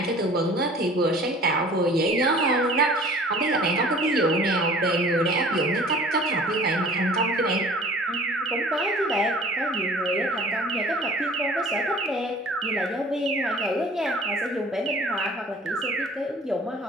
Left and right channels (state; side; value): normal; both; correlation 0.47